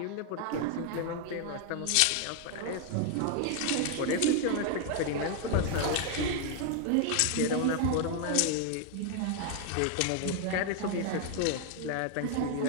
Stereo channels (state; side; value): different; both; correlation 0.00